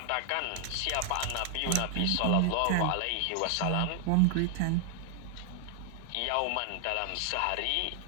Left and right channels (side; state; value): both; different; correlation 0.00